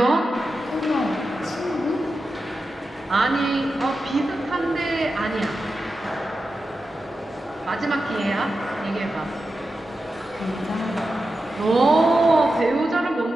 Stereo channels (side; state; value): both; normal; correlation 0.91